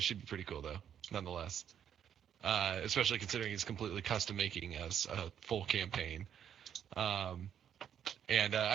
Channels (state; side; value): quieter; left; 9.1 dB